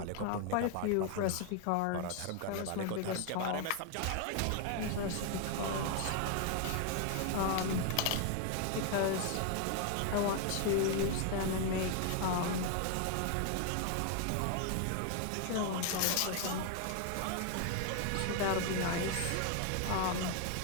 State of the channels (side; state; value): both; different; correlation 0.00